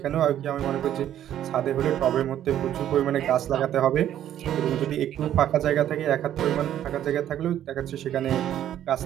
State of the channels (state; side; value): quieter; left; 11.3 dB